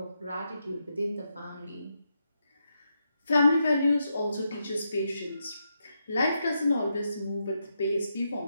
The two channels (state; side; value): inverted; both; correlation -0.83